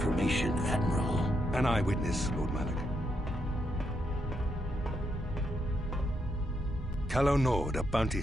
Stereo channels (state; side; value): normal; both; correlation 0.79